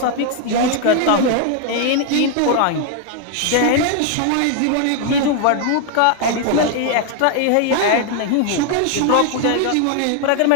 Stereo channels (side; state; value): both; different; correlation 0.00